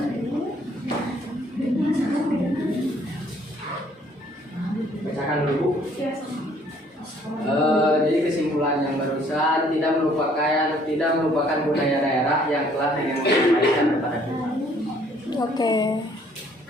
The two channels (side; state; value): both; normal; correlation 0.61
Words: bacakan dulu. Ya, sama. Jadi kesimpulan yang barusan tidak melupakan budaya daerah yang telah disampaikan kepada kita. Oke.